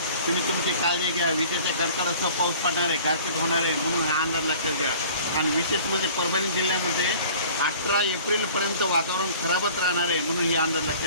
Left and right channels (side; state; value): both; inverted; correlation -0.47